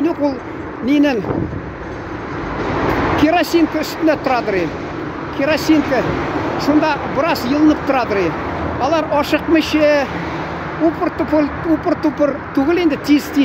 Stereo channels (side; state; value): both; identical; correlation 1.00